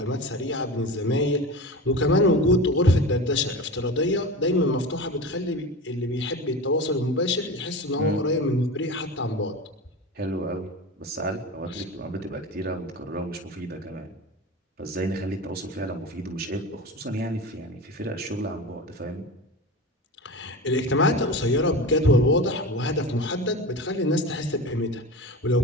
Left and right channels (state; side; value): normal; both; correlation 0.29